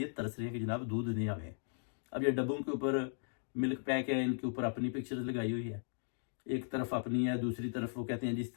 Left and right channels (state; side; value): silent; right; digital silence